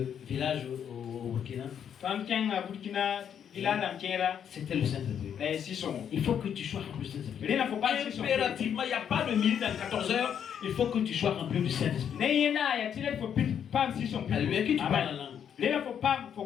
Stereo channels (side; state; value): right; quieter; 8.5 dB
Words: villages au Burkina. C'était le Saint-Esprit. Il faut que tu sois rempli du Saint-Esprit. Impérativement, il n'y a pas de minute dans 14 heures. Il faut que tu sois rempli du Saint-Esprit. Alléluia, que tu parles en langue.